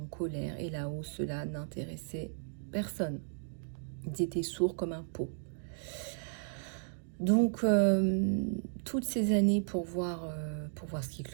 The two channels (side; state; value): left; silent; digital silence